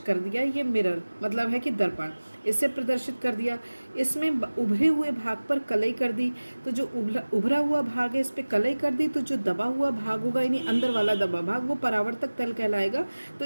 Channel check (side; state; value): both; inverted; correlation -1.00